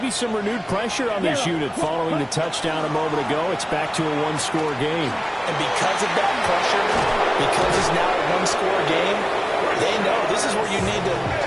some renewed pressure on this unit following the touchdown a moment ago. It's back to a 1-score game. And because of that pressure, because it's now a 1-score game, they know this is where you need to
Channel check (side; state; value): both; identical; correlation 1.00